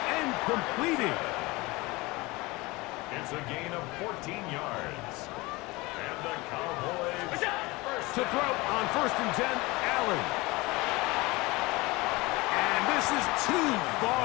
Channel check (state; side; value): quieter; right; 22.7 dB